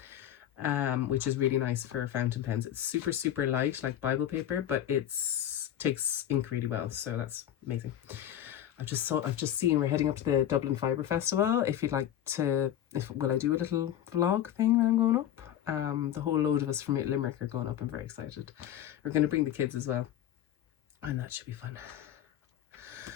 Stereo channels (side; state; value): right; quieter; 11.2 dB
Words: which is really nice for fountain pens. It's super, super light, like Bible paper, but takes ink really well. So that's amazing. I've just seen we're heading up to the Dublin Fibre Festival. If you'd like to, will I do a little vlog thing when I'm going up? The whole load of us from Limerick are going up. I'm very excited. We're going to bring the kids as well, and that should be fun.